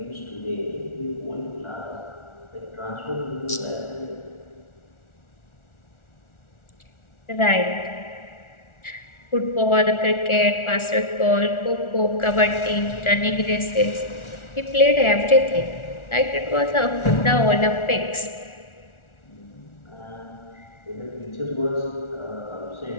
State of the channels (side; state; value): right; late; 1.4 ms